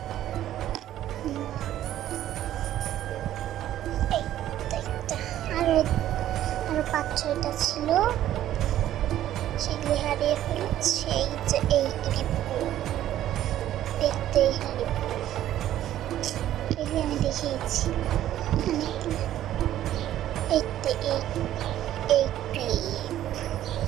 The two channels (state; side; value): quieter; left; 12.5 dB